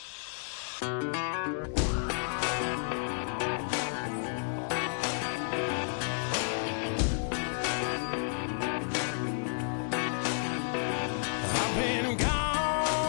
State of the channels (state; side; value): silent; right; digital silence